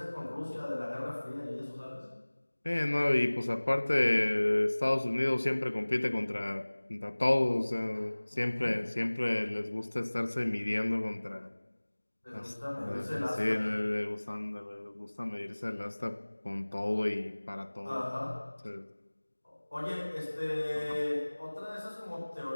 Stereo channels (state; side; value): inverted; both; correlation -1.00